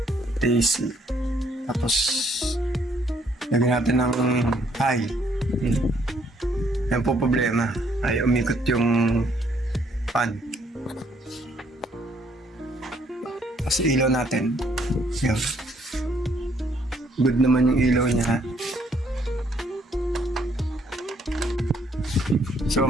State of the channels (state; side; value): normal; both; correlation 0.68